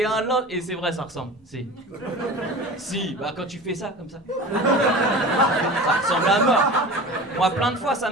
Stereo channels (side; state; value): both; normal; correlation 0.35